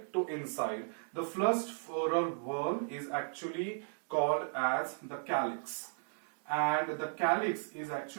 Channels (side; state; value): left; silent; digital silence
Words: to inside. The first floral whorl is actually called as the calyx, and the calyx is